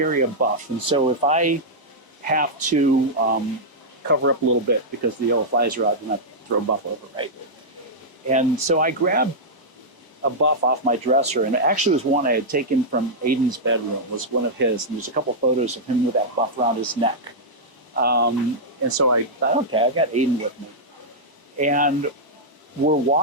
a buff. And so if I have to cover up a little bit because the yellow flies are out, then I throw a buff over, right? And so I grabbed a buff off my dresser, and it actually was one I had taken from Aidan's bedroom, was one of his, and there's a couple photos of him with that buff around his neck. And so I thought, okay, I got Aidan with me. And we're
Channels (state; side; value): late; right; 1.0 ms